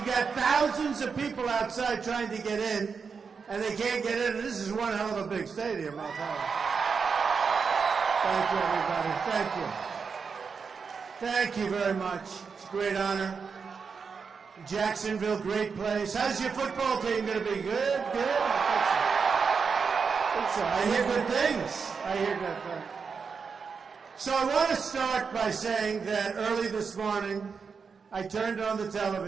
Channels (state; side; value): quieter; left; 5.6 dB